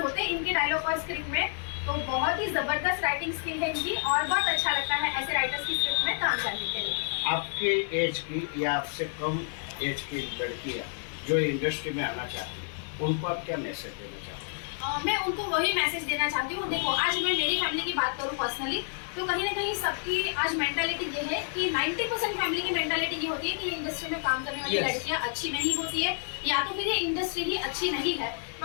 हैं इनके डायलॉग और स्क्रिप्ट में। तो बहुत ही ज़बरदस्त राइटिंग स्किल है इनकी, और बहुत अच्छा लगता है ऐसे राइटर्स की स्क्रिप्ट में काम करने के लिए। आपके एज की या आपसे कम एज की लड़कियाँ जो इंडस्ट्री में आना चाहती हैं, उनको आप क्या मैसेज देना चाहते हैं? मैं उनको वही मैसेज देना चाहती हूँ। देखो, आज मैं मेरी फैमिली की बात करूँ पर्सनली, तो कहीं ना कहीं सबकी आज मेंटालिटी ये है कि 90% फैमिली की मेंटालिटी ये होती है कि ये इंडस्ट्री में काम करने वाली लड़कियाँ अच्छी नहीं होती है, या तो फिर ये इंडस्ट्री ही अच्छी नहीं है।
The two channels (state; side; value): silent; right; 58 dB below the other